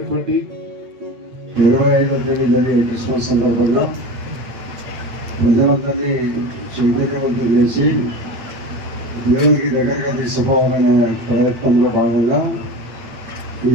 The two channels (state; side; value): late; left; 8.6 ms